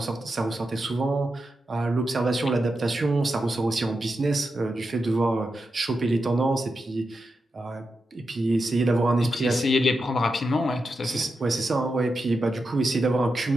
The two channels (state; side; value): normal; both; correlation 0.88